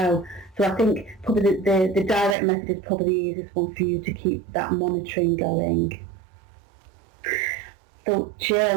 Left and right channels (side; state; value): left; drops out; at 2.4 s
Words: So I think probably the direct method is probably the easiest one for you to keep that monitoring going. So